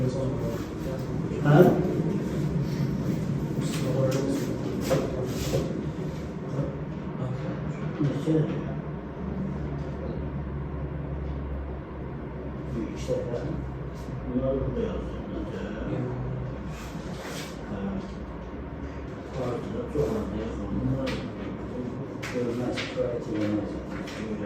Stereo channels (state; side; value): identical; both; correlation 1.00